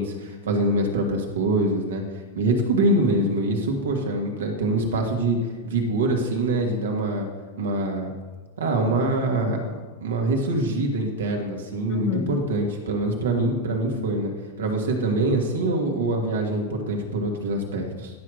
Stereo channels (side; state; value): both; normal; correlation 0.03